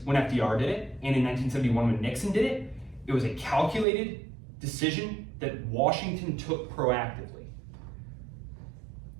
when FDR did it, and in 1971 when Nixon did it, it was a calculated decision that Washington took proactively.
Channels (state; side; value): drops out; left; at 3.9 s